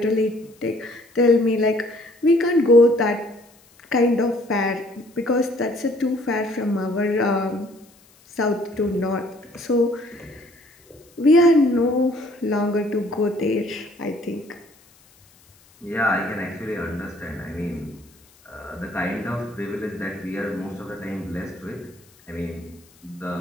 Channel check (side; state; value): left; noise; hiss, 29 dB below the sound